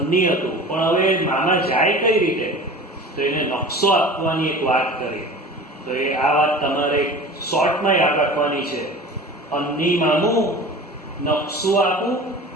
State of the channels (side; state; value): both; normal; correlation 0.38